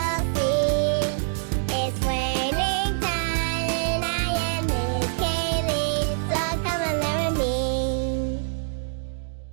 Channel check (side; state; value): left; silent; digital silence